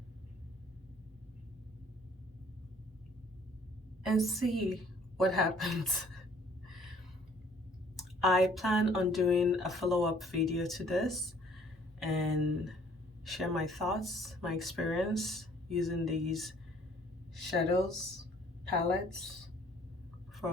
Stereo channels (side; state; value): both; normal; correlation 0.58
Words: and see what happens. I plan on doing a follow-up video to this and share my thoughts, my experience using these shadows, palettes for